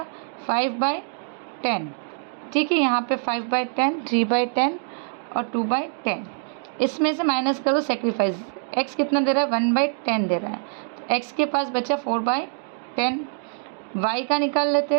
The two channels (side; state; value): left; silent; 62 dB below the other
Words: 5/10। ठीक है, यहाँ पे 5/10, 3/10 और 2/10, इसमें से माइनस करो सेक्रीफाइस। एक्स कितना दे रहा है, 1/10 दे रहा है, तो एक्स के पास बचा 4/10। वाई का निकाल लेते